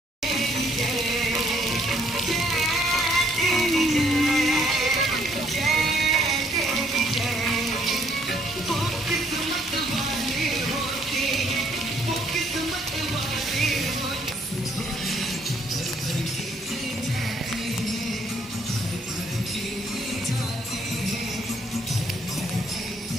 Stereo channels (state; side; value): normal; both; correlation 0.66